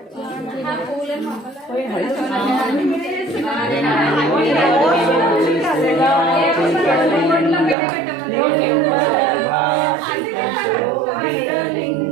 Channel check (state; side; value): drops out; left; at 7.8 s